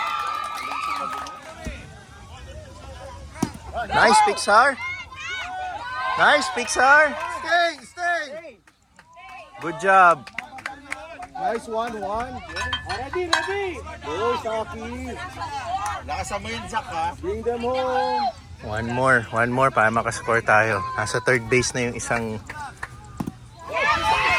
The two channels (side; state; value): both; identical; correlation 1.00